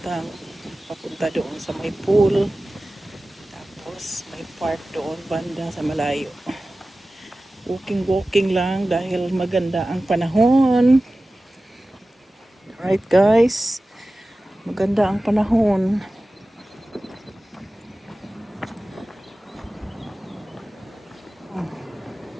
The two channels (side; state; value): both; normal; correlation 0.96